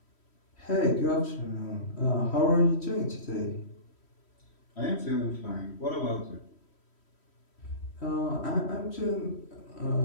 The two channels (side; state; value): right; late; 3.1 ms